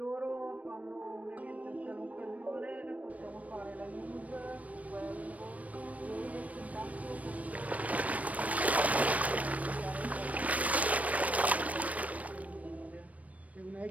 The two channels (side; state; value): left; late; 0.068 ms